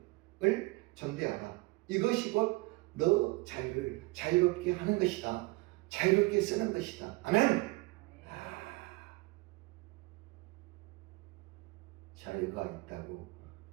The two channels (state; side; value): quieter; left; 23.8 dB